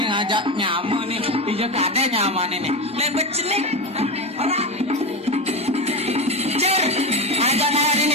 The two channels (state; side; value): normal; both; correlation 0.17